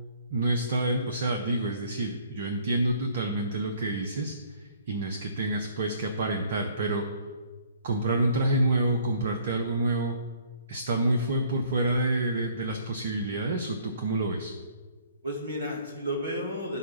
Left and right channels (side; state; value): both; inverted; correlation -0.58